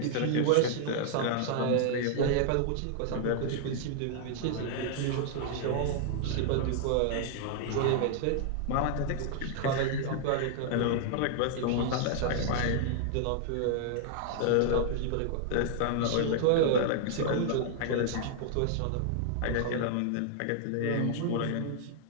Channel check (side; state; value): both; different; correlation -0.01